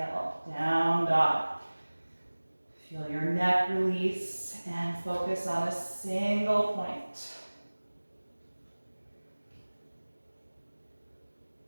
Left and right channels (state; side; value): inverted; both; correlation -1.00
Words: down dog. Feel your neck release and focus on a single point.